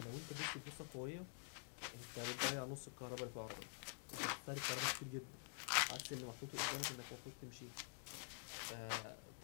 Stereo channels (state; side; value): silent; right; digital silence